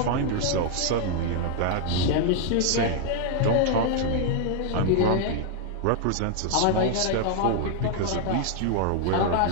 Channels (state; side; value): different; both; correlation 0.00